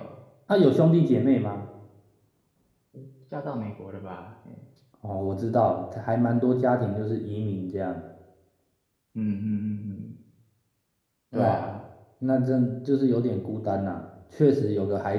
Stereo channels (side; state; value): both; identical; correlation 1.00